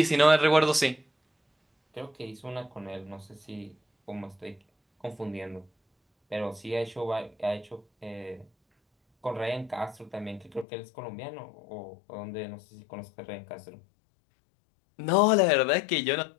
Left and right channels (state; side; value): drops out; right; at 10.7 s